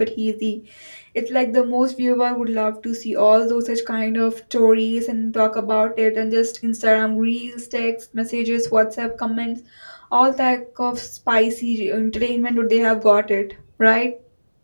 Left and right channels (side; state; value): both; inverted; correlation -1.00